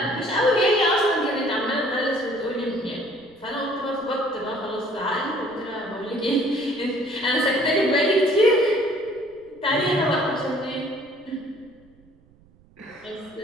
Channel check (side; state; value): right; noise; rumble, 29 dB below the sound